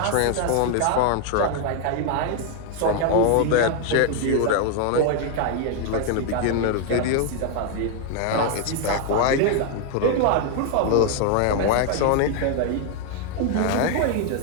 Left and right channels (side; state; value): both; different; correlation 0.00